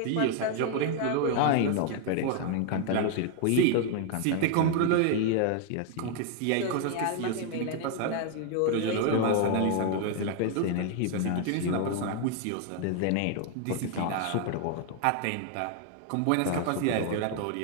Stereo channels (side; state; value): both; different; correlation 0.00